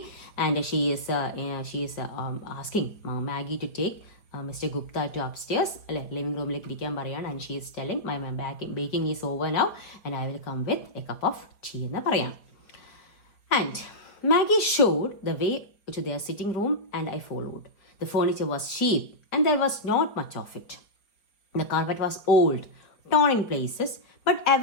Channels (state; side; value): late; right; 4.9 ms